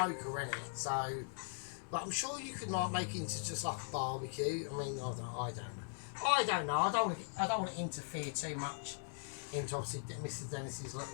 isn't it? So, but I'm sure you could like make it into just like a barbecue. I mean, I don't know. I don't want to interfere too much into obviously Mr. Dennis's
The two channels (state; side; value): silent; right; digital silence